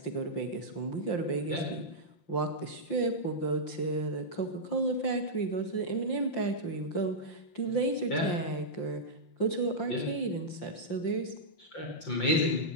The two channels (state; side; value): late; right; 5.7 ms